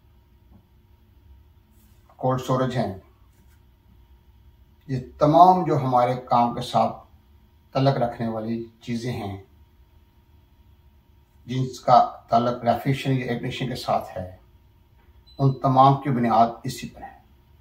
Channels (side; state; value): both; identical; correlation 1.00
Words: कोल्ड स्टोरेज हैं। ये तमाम जो हमारे काम के साथ तल्लुक़ रखने वाली चीज़ें हैं, जिनका ताल्लुक़ रेफ्रिजरेशन या एयर कंडीशनिंग के साथ है, उन तमाम की बुनियाद इसी पर है।